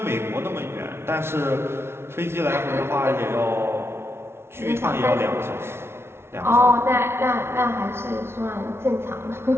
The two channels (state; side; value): late; left; 0.12 ms